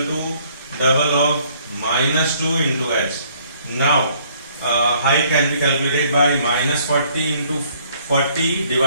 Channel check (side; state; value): both; inverted; correlation -0.62